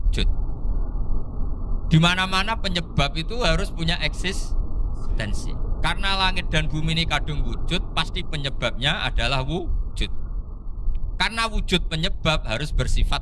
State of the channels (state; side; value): identical; both; correlation 1.00